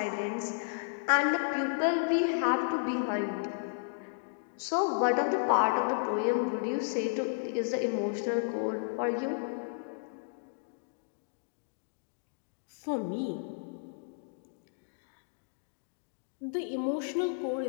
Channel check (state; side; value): silent; right; digital silence